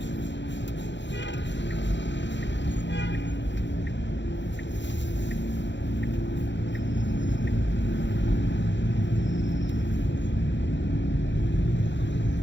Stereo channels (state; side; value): late; right; 0.52 ms